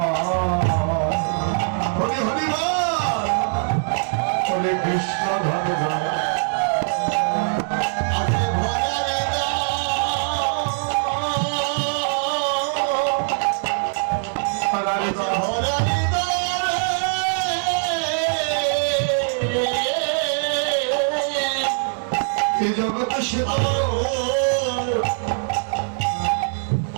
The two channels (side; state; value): left; silent; 61 dB below the other